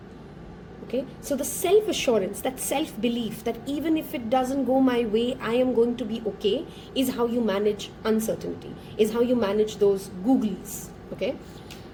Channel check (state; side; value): identical; both; correlation 1.00